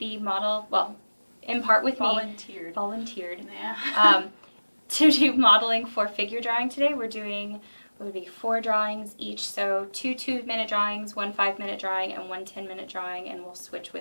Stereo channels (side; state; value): both; inverted; correlation -1.00